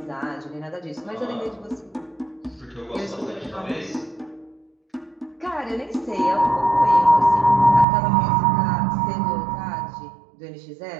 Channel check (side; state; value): left; drops out; at 7.9 s